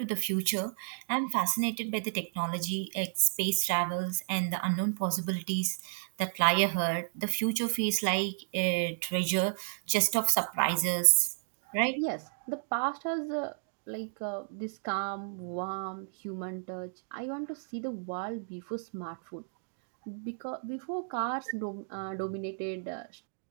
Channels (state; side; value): silent; left; digital silence